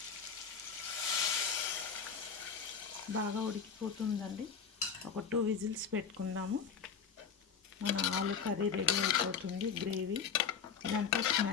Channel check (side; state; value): right; quieter; 6.5 dB